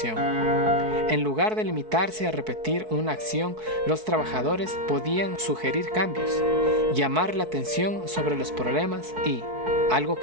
En lugar de limitarse a repetir una acción, los trabajadores podían sugerir cambios, llamar la atención sobre los problemas y, algo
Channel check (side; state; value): left; late; 4.6 ms